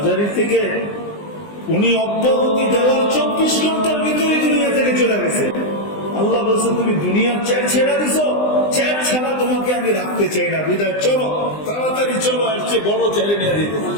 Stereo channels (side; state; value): right; late; 20 ms